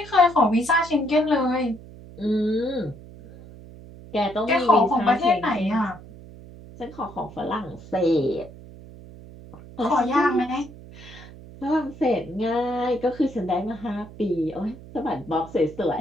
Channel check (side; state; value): right; noise; hum, 18 dB below the sound